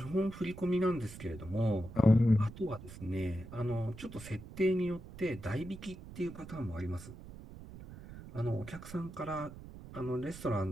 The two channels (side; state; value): right; noise; rumble, 14 dB below the sound